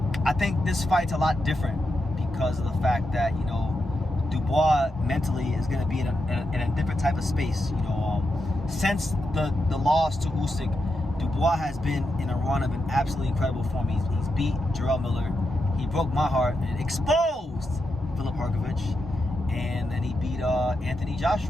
I think this fight's a lot different because of the fact that Dubois mentally is going to be in a different type of space. Since the loss to Usyk, Dubois has been in a run of an absolutely incredible form. He's beat Jarrell Miller. He broke my heart and exposed Filip Hrgovic, and then he beat Anthony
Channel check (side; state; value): both; normal; correlation 0.86